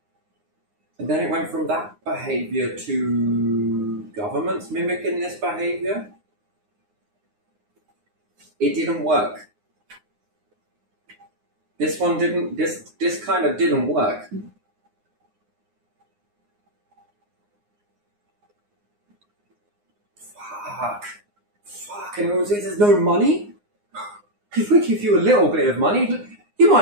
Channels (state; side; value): late; left; 9.7 ms